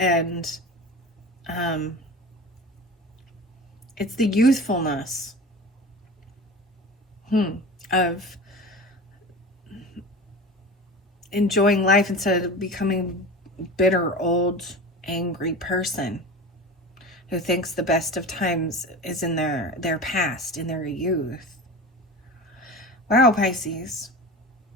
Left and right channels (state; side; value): normal; both; correlation 0.32